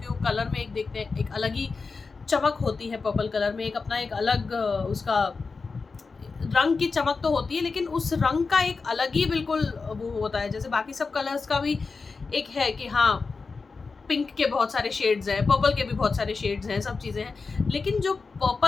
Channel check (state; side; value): quieter; right; 4.5 dB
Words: वो कलर में एक देखते हैं एक अलग ही चमक होती है। पर्पल कलर में एक अपना एक अलग उसका रंग की चमक तो होती है, लेकिन उस रंग का एक अलग ही बिल्कुल वो होता है। जैसे बाकी सब कलर्स का भी एक है कि हाँ, पिंक के बहुत सारे शेड्स हैं, पर्पल के भी बहुत सारे शेड्स हैं, सब चीज़ें हैं, लेकिन जो